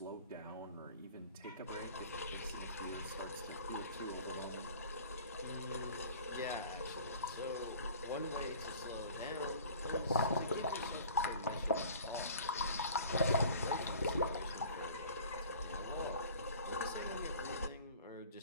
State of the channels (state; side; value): inverted; both; correlation -0.46